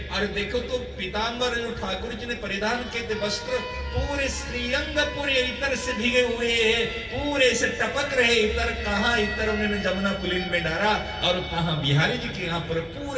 और देखो तो पीतांबर जो ठाकुर जी ने परिधान किए थे वस्त्र पूरे श्रीअंग पूरे इतर से भीगे हुए हैं, पूरे से टपक रहे इतर। कहाँ इतर उन्होंने जमुना पुलिन में डाला और कहाँ बिहारी जी के यहाँ पर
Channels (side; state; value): both; identical; correlation 1.00